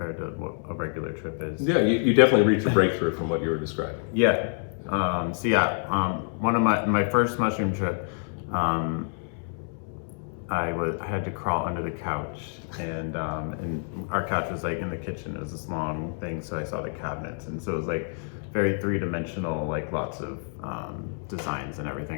to what a regular trip is. Yeah, you definitely reached a breakthrough from what you were describing. Yeah. One of my first mushroom trip, I had to crawl under the couch, and our couch was like in the kitchen. It was this long thing, so I saw the cabinets, and so it was like very three-dimensional, like lots of designs and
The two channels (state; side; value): silent; right; 60 dB below the other